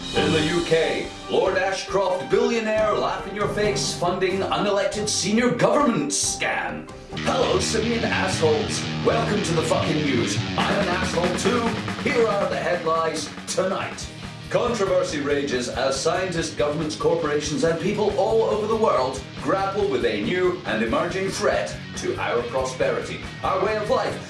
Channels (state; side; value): identical; both; correlation 1.00